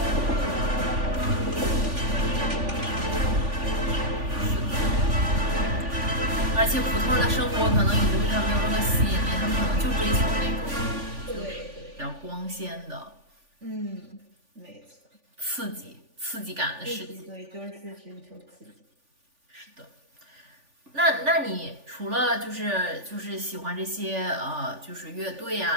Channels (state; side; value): late; left; 3.5 ms